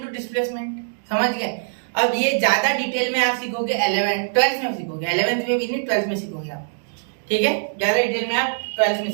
displacement, समझ गए। अब ये ज्यादा डिटेल में आप सीखोगे 12th में सीखोगे, 11th में भी नहीं 12th में सीखोगे आप, ठीक है। ज्यादा डिटेल में आप 12th में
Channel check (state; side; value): silent; left; digital silence